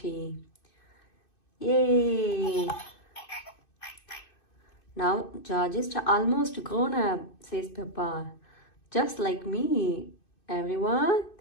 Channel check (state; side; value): late; right; 2.6 ms